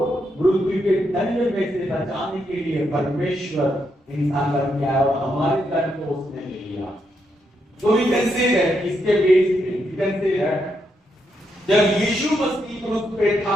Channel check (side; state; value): both; normal; correlation 0.80